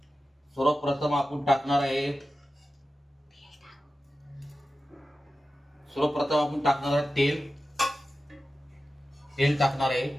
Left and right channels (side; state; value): both; normal; correlation 0.93